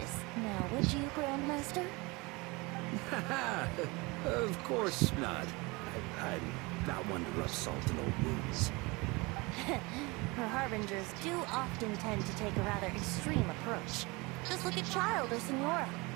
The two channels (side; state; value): left; quieter; 25.3 dB